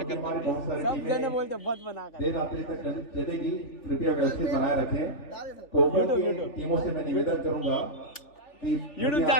कर बहुत सारी टीमें बोलते मत बना कर देर रात्रि तक चलेगी, कृपया व्यवस्थित बनाए रखें। कोपन की टीमों से मैं निवेदन करूंगा कि यूट्यूब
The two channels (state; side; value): late; right; 3.4 ms